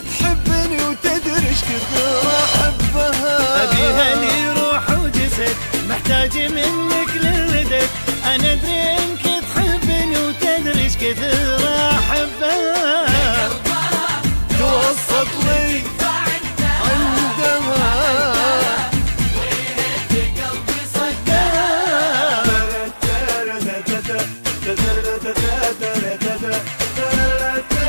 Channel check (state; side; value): inverted; both; correlation -1.00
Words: وتدري إيش كثر أحبها. أبيها لي روح وجسد، محتاج منك للمدد. أنا أدري إنك تحبني وتدري إيش كثر أحبها. توسط لي عندها ويهد قلبي صدها.